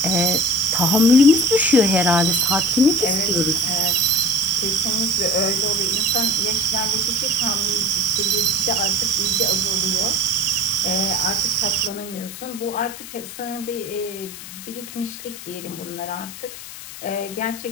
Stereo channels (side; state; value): left; noise; hiss, 13 dB below the sound